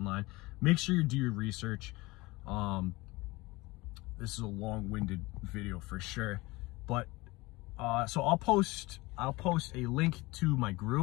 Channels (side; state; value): right; quieter; 21.9 dB